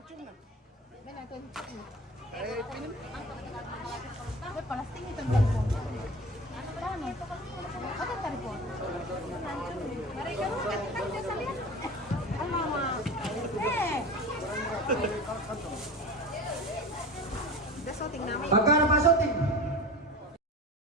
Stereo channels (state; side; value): normal; both; correlation 0.33